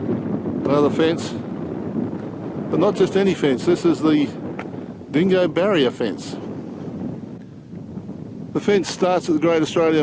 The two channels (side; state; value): both; identical; correlation 1.00